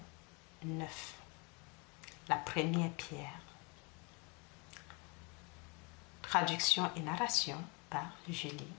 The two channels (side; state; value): right; quieter; 30.8 dB